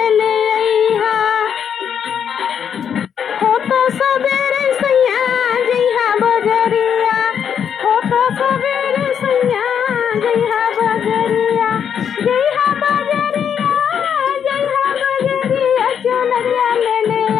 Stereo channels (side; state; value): right; quieter; 8.0 dB